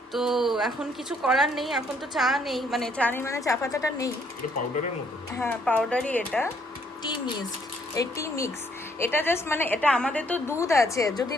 তো এখন কিছু করার নেই, এখন তো চা নেই, মানে চা পাতাটা নেই। এটা পাউডারের মতো? হ্যাঁ পাউডারই, এটা টি মিক্স। এটা জাস্ট মানে এটা আমাদের তো দুধ আছে, যদি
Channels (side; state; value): both; normal; correlation 0.67